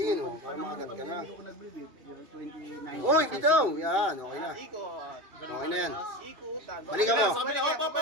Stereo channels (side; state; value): left; late; 2.4 ms